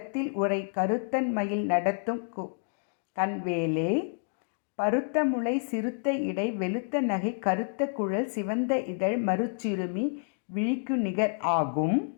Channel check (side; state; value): right; silent; digital silence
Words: உரை கருத்தன் மயில் நடத்தும் கண்வேலே. பருத்த முளை சிறுத்த இடை வெளுத்த நகை கருத்த குழல் சிவந்த இதழ் மருச்சிறுமி விழிக்கு நிகர் ஆகும்.